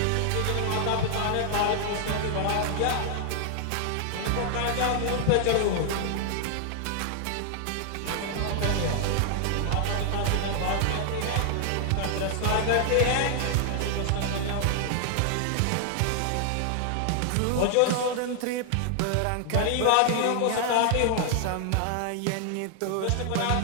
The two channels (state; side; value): different; both; correlation 0.00